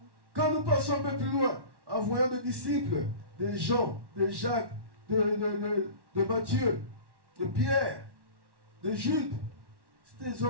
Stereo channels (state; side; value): late; left; 1.1 ms